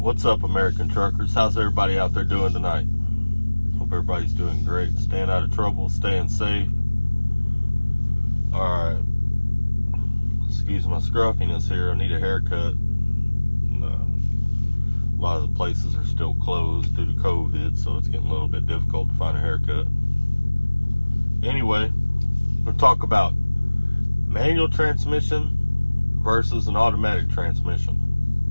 What's up, American truckers? How's everybody out there doing tonight? Hope everybody's doing great, staying out of trouble, staying safe. Alright, excuse my scruffiness here. I need a haircut. A lot of the places are still closed due to COVID, so it's getting a little bit difficult to find a haircut. Anyway, we'll talk about manual transmission versus an automatic transmission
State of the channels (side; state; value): both; inverted; correlation -1.00